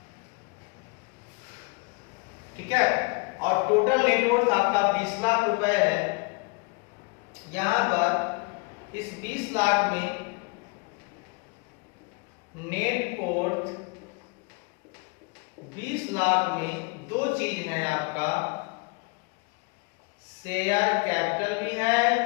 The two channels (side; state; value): right; quieter; 30.0 dB